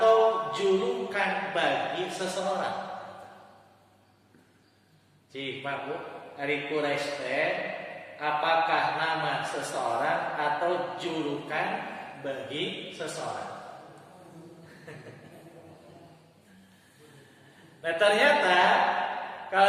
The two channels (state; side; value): identical; both; correlation 1.00